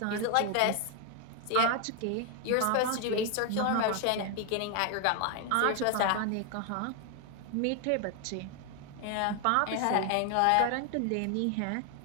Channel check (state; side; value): different; both; correlation 0.01